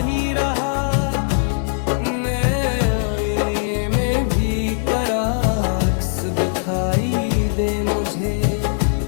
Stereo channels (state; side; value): silent; right; digital silence